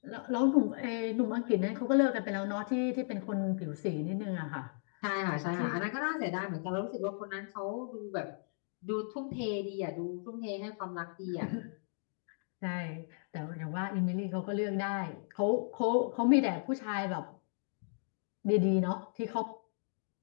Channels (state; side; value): silent; right; digital silence